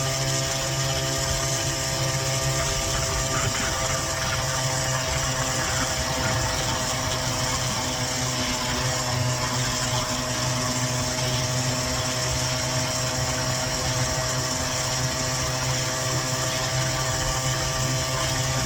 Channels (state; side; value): identical; both; correlation 1.00